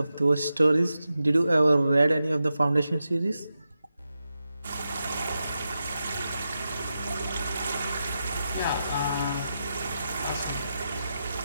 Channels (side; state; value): both; inverted; correlation -0.89